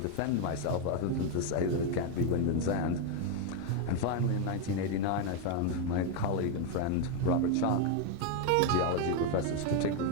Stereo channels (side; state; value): both; different; correlation 0.02